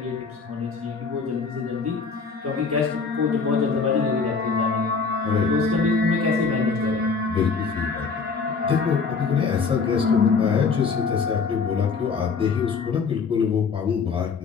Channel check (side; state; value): right; quieter; 5.0 dB